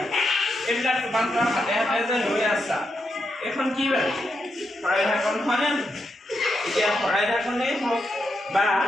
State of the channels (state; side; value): normal; both; correlation 0.83